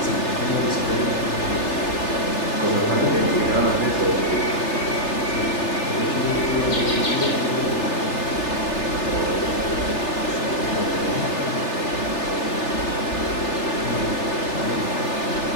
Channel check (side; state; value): right; late; 3.4 ms